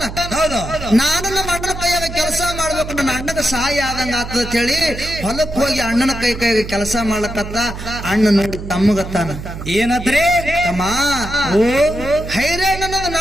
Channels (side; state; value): right; noise; hum, 9 dB below the sound